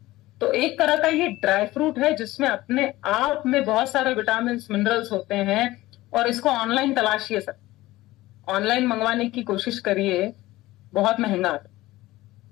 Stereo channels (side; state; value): right; quieter; 17.7 dB